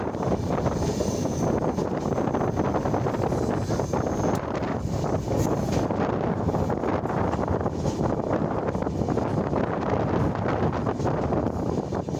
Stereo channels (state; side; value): identical; both; correlation 1.00